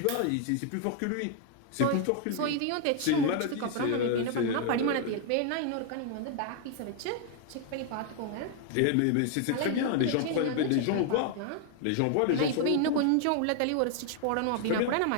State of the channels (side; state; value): both; different; correlation 0.00